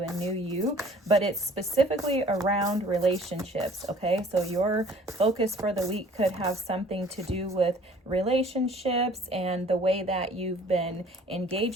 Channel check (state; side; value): normal; both; correlation 0.53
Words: new you, but it's specifically around relationships. Okay, so your focus for the week could have something to do with relationships and the way that you've been